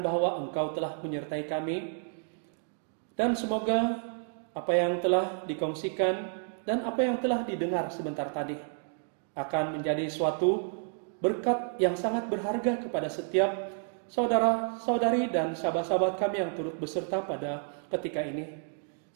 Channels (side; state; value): left; silent; 57 dB below the other